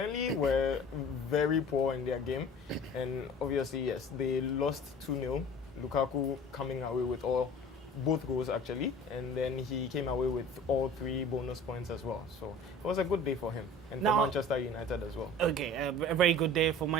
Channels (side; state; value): both; normal; correlation 0.43